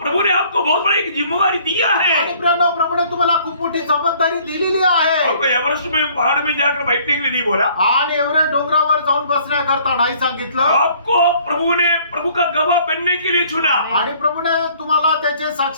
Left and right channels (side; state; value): both; inverted; correlation -0.58